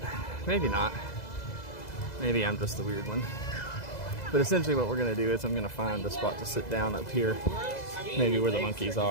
maybe not. Maybe I'm just the weird one. But essentially what we're gonna do is I'm gonna find a spot to sit down up here, maybe where the monkeys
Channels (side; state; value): right; late; 2.0 ms